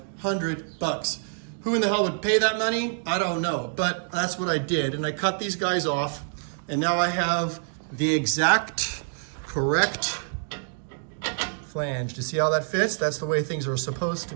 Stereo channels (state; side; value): silent; left; digital silence